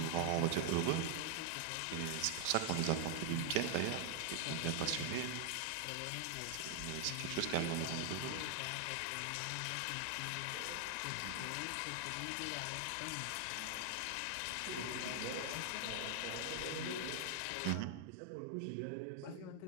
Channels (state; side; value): different; both; correlation 0.00